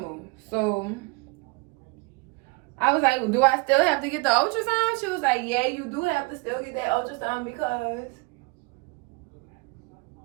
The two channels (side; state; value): left; quieter; 28.1 dB